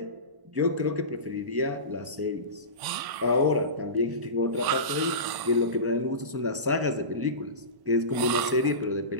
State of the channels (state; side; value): late; left; 1.0 ms